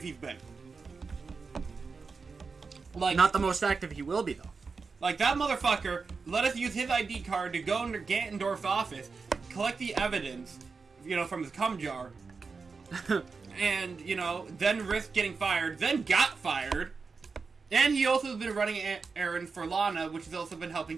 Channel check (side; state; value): left; quieter; 4.7 dB